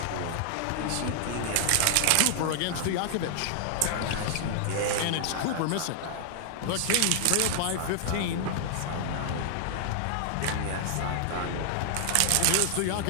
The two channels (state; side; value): different; both; correlation 0.00